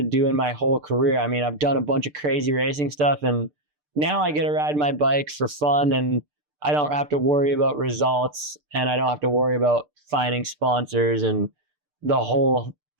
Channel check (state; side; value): late; left; 6.7 ms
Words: do in my whole career. I've done a bunch of crazy racing stuff, and now I get to ride my bike for fun, and I don't have to worry about results, and I don't have to worry about finding sponsors and the whole